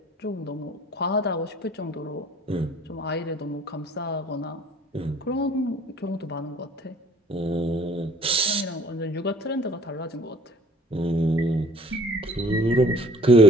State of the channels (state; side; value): normal; both; correlation 0.54